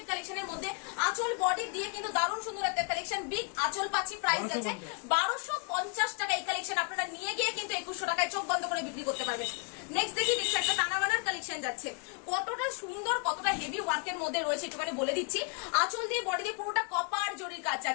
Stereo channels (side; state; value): right; quieter; 39.7 dB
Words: কালেকশনের মধ্যে আঁচল বডি দিয়ে কিন্তু দারুণ সুন্দর একটা কালেকশন, বিগ আঁচল পাচ্ছি, প্রাইস আছে 1250 টাকা। এই কালেকশন আপনারা নিয়ে গিয়ে কিন্তু 2100 টাকায় চোখ বন্ধ করে বিক্রি করতে পারবেন। নেক্সট দেখি একটা টানাবানার কালেকশন যাচ্ছে, কতটা সুন্দর কতটা হেভি ওয়ার্কের মধ্যে রয়েছে একটুখানি বলে দিচ্ছি। আঁচল দিয়ে বডি দিয়ে পুরোটা কপার জরির কাজ